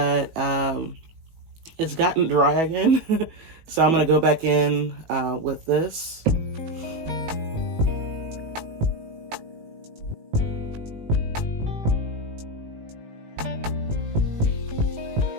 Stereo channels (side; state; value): left; late; 18 ms